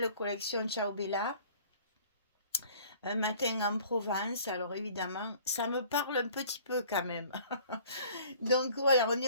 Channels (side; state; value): both; inverted; correlation -0.51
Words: collection Ciao Bella un matin en Provence. Alors évidemment, ça me parle un petit peu quand même. Donc voilà, on